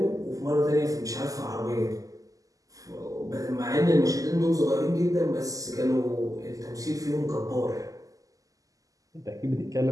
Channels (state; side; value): late; left; 0.17 ms